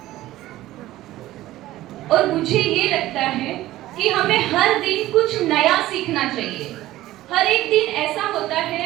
और मुझे ये लगता है कि हमें हर दिन कुछ नया सीखना चाहिए. हर एक दिन ऐसा होता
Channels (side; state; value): left; quieter; 15.7 dB